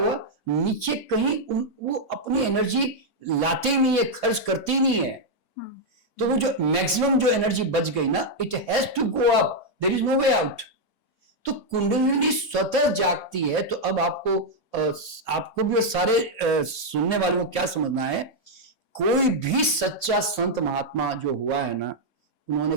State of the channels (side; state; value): right; late; 3.4 ms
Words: नीचे कहीं वो अपनी एनर्जी लाते ही नहीं है, खर्च करते ही नहीं है, तो वो जो मैक्सिमम जो एनर्जी बच गई ना, it has to go up, there is no way out. तो कुंडलिनी स्वतः जागती है, तो अब आपको आपको भी सारे सुनने वालों को क्या समझना है, कोई भी सच्चा संत महात्मा जो हुआ है ना, उन्होंने